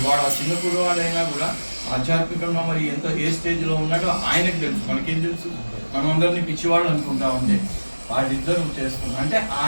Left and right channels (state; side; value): inverted; both; correlation -1.00